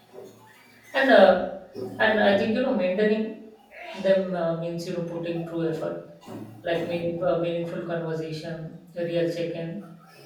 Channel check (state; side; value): identical; both; correlation 1.00